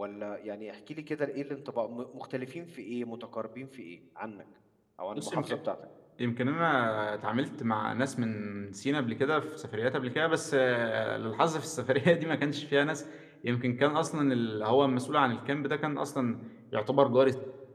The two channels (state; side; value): identical; both; correlation 1.00